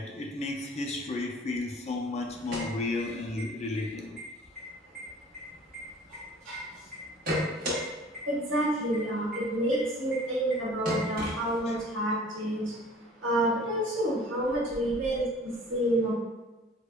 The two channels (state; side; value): normal; both; correlation 0.49